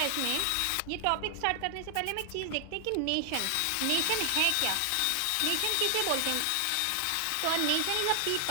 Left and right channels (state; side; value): different; both; correlation 0.00